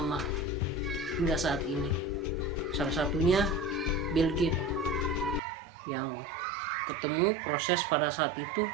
hingga saat ini. Salah satunya Bill Gates, yang ketemu proses pada saat itu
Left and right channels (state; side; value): drops out; left; at 5.4 s